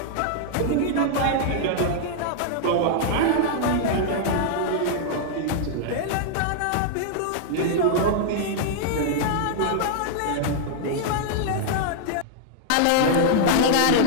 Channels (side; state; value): both; different; correlation -0.01